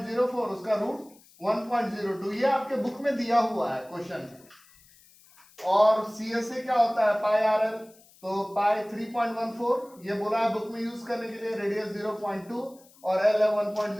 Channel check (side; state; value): left; noise; hiss, 27 dB below the sound